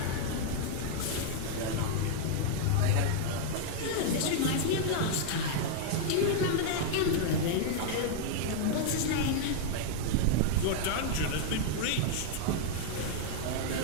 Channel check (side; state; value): both; different; correlation 0.00